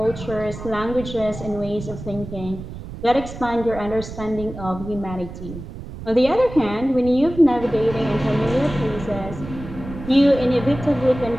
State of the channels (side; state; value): right; noise; rumble, 11 dB below the sound